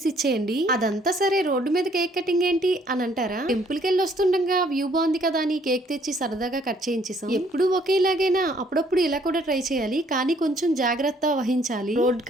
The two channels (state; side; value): normal; both; correlation 0.63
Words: ఇచ్చేయండి. అదంతా సరే, రోడ్డు మీద కేక్ కటింగ్ ఏంటి అని అంటారా? టెంపుల్ కి వెళ్ళి వస్తుండగా వ్యూ బాగుంది కదా అని కేక్ తెచ్చి సరదాగా కట్ చేయించేసాం. ఎప్పుడు ఒకేలాగైనా అప్పుడప్పుడు ఇలా కూడా ట్రై చేయాలి, కానీ కొంచెం జాగ్రత్త వహించాలి రోడ్